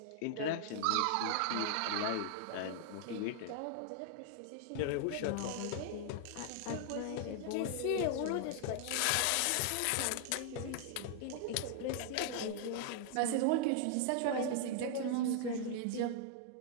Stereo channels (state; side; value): different; both; correlation 0.00